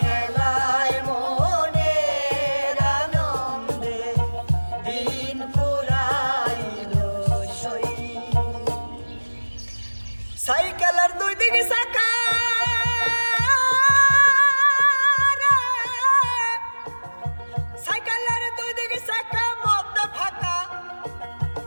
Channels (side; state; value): both; inverted; correlation -1.00